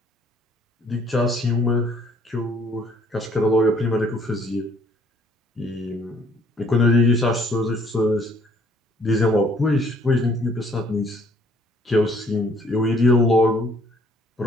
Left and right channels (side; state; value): both; normal; correlation 0.61